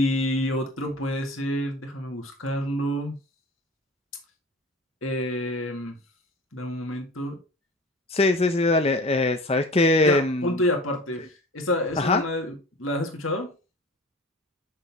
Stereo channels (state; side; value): normal; both; correlation 0.39